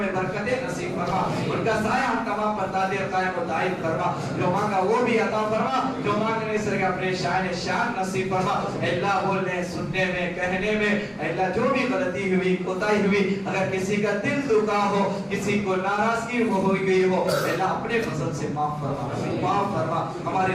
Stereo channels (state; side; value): identical; both; correlation 1.00